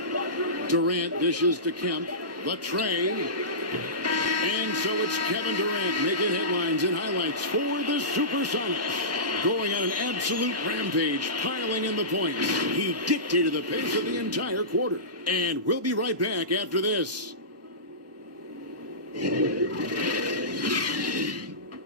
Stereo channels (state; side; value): late; left; 1.2 ms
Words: Durant dishes to Kemp. The tray. And so it's Kevin Durant making headlines and highlights for the Supersonics. Going on an absolute rampage, piling in the points. He dictated the pace of the entire quarter. And we'll be right back after this.